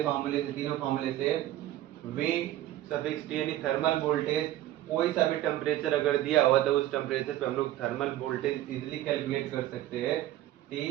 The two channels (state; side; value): quieter; left; 14.0 dB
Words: फॉर्मूले से, तीनों फॉर्मूले से V सफिक्स T यानी थर्मल वोल्टेज, कोई सा भी टेम्परेचर अगर दिया हुआ तो उस टेम्परेचर पे हम लोग थर्मल वोल्टेज इजीली कैलकुलेट कर सकते हैं।